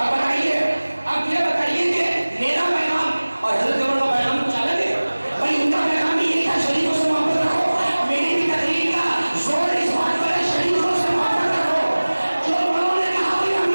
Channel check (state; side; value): inverted; both; correlation -1.00